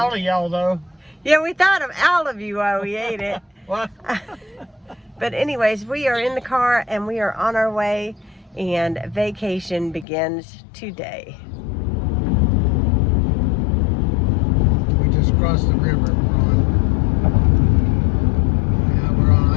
of y'all though. Yeah, we thought of all of you while we ate it. What? But anyways, we are in the car and we are on our way, and vacation begins today. We just crossed the river. We're on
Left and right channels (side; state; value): right; drops out; at 10.1 s